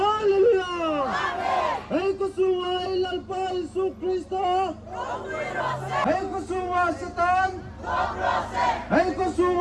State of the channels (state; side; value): identical; both; correlation 1.00